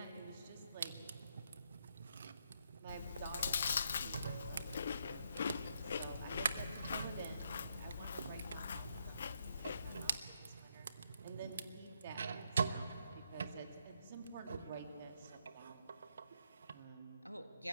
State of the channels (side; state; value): both; inverted; correlation -0.76